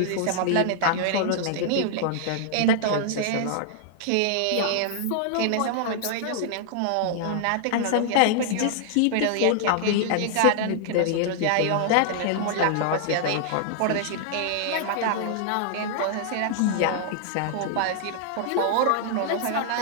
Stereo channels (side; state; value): both; different; correlation -0.01